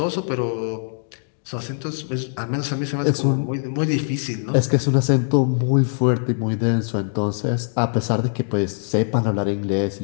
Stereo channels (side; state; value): right; silent; digital silence